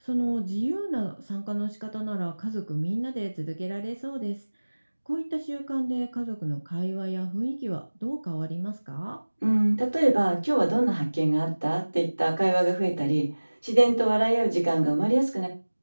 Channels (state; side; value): inverted; both; correlation -1.00